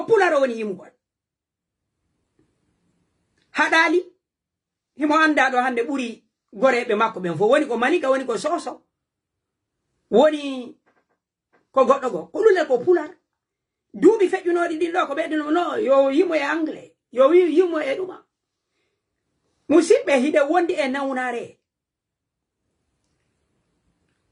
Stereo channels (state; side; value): identical; both; correlation 1.00